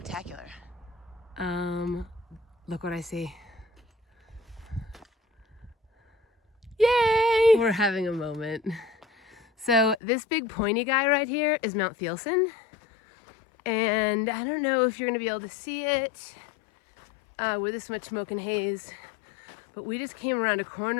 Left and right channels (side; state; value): right; drops out; at 10.0 s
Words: Look what I see. Yay! We're having a moment. So this big pointy guy right here is Mount Thielsen. And I don't know if you're gonna be able to see it with this much smoke and haze, but we just came around a